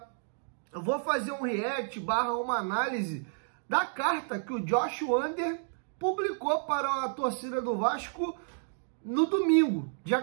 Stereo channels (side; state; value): left; silent; digital silence